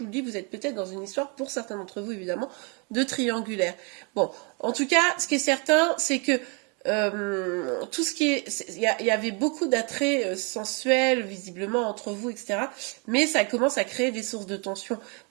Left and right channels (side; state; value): left; quieter; 34.0 dB